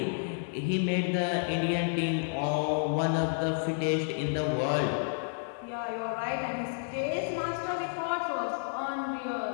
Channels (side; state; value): right; silent; 57 dB below the other